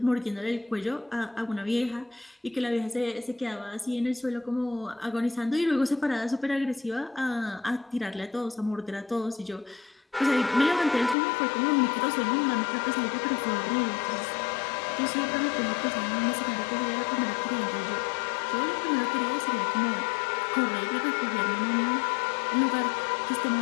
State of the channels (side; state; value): right; drops out; at 11.2 s